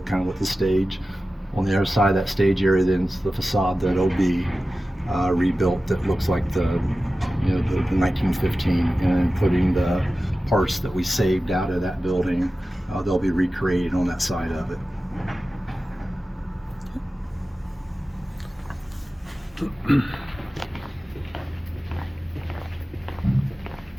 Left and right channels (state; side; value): normal; both; correlation 0.95